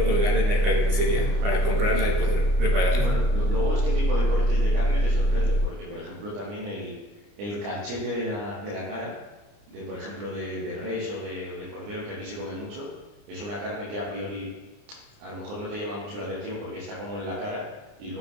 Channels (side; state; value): left; late; 29 ms